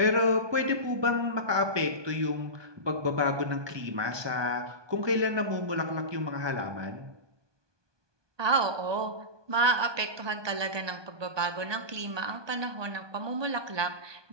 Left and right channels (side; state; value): left; late; 1.2 ms